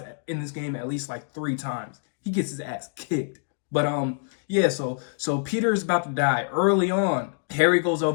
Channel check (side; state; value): right; silent; digital silence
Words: in this game at least like 3 times. He gets his ass kicked. But yeah, so Peter is about to die early on. Harry goes